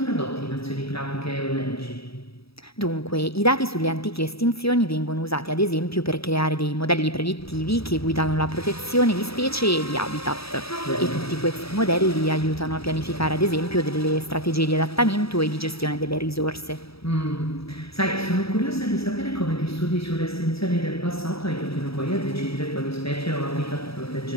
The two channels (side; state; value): right; late; 0.77 ms